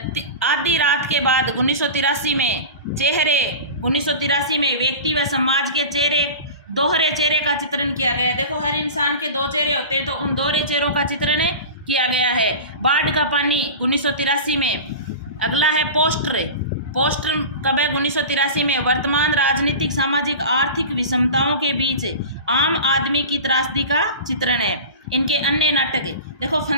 आधी रात के बाद 1983 में। चेहरे 1983 में व्यक्ति व समाज के चेहरे, दोहरे चेहरे का चित्रण किया गया है। देखो हर इंसान के दो चेहरे होते हैं, तो उन दोहरे चेहरों का चित्रण किया गया है। बाढ़ का पानी 1983 में। अगला है पोस्टर। पोस्टर कब है? 1983 में। वर्तमान राजनीतिक सामाजिक आर्थिक विषमताओं के बीच आम आदमी की त्रासदी का चित्रण है। इनके अन्य नाटक देखो।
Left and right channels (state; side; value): inverted; both; correlation -0.32